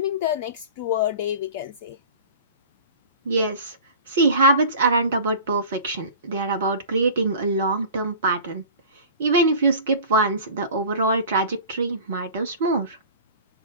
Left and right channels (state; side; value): inverted; both; correlation -0.40